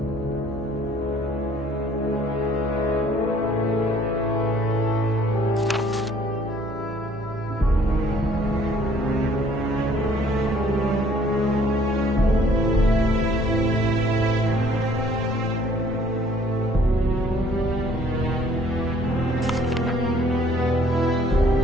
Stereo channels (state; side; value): normal; both; correlation 0.60